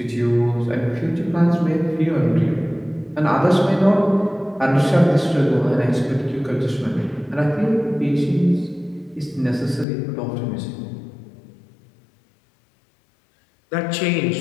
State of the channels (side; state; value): right; drops out; at 9.9 s